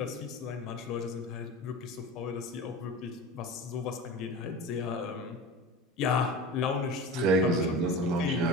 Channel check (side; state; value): both; normal; correlation 0.32